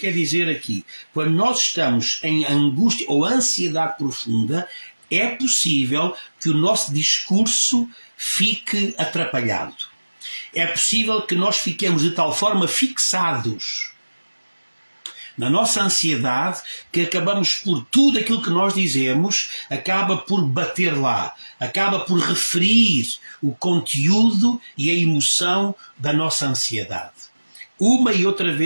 dizer aqui. Quando nós estamos em angústia ou ansiedade profunda, é possível que o nosso discurso fique atrapalhado. É possível que nós fiquemos de tal forma fixados na nossa ansiedade que acabamos por tudo aquilo que nós dizemos, acaba por bater lá, acaba por referir o conteúdo e a emoção da nossa ansiedade. Uma e outra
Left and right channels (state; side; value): inverted; both; correlation -1.00